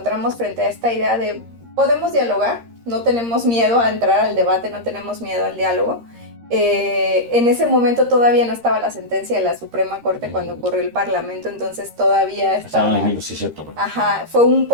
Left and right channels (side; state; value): left; late; 13 ms